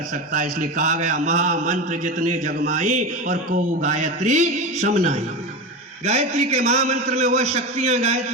सकता है। इसलिए कहा गया महामंत्र जितने जगमाई, और को गायत्री समनाई। गायत्री के महामंत्र में वह शक्तियां,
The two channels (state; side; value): normal; both; correlation 0.23